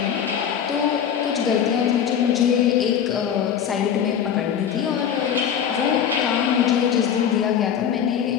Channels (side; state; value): right; quieter; 8.6 dB